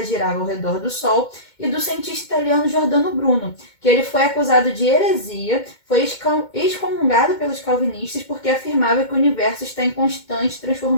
girava ao redor do Sol, e do cientista italiano Giordano Bruno, que ele foi acusado de heresia, foi excomungado pelos calvinistas porque afirmava que o universo está em constante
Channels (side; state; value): right; late; 2.2 ms